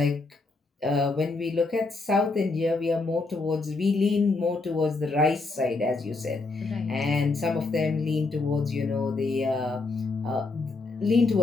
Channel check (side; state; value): right; quieter; 3.6 dB